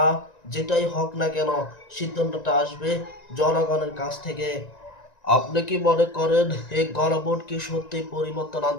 যেটাই হোক না কেন, সিদ্ধান্তটা আসবে জনগণের কাছ থেকে। আপনি কি মনে করেন এই গণভোট কি সত্যি পরিবর্তন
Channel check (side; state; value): right; late; 1.9 ms